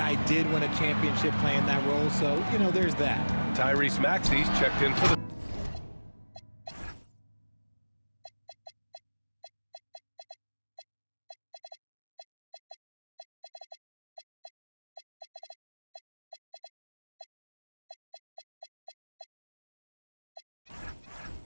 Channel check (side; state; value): both; inverted; correlation -1.00